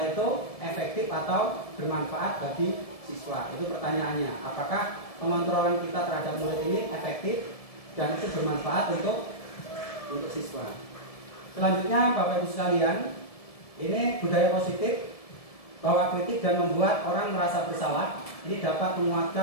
itu efektif atau bermanfaat bagi siswa? Itu pertanyaannya. Apakah pengontrolan kita terhadap murid ini efektif dan itu bermanfaat untuk siswa? Selanjutnya, Bapak Ibu sekalian, ini budaya positif bahwa kritik dan membuat orang merasa bersalah ini dapat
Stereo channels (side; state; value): right; late; 1.7 ms